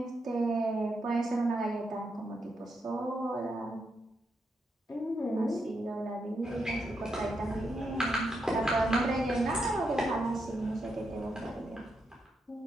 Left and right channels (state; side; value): normal; both; correlation 0.82